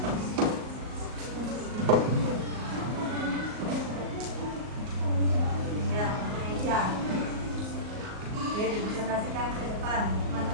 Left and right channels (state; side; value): late; left; 38 ms